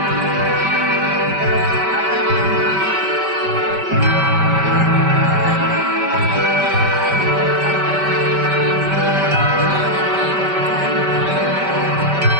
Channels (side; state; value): left; late; 5.2 ms